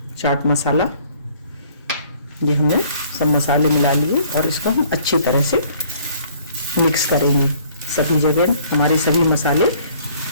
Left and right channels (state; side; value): inverted; both; correlation -0.57